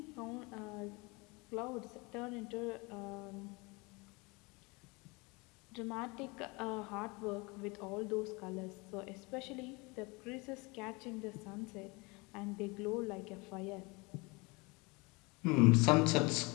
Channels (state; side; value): quieter; right; 26.8 dB